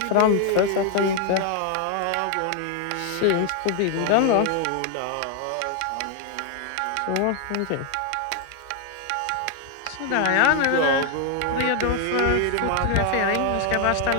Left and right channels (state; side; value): different; both; correlation 0.00